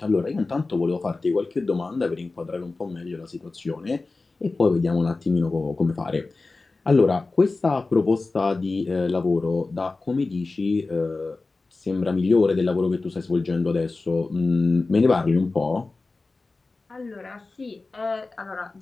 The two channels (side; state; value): right; quieter; 3.6 dB